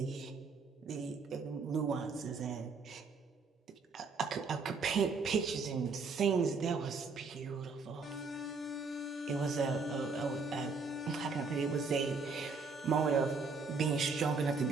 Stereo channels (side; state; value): left; quieter; 4.5 dB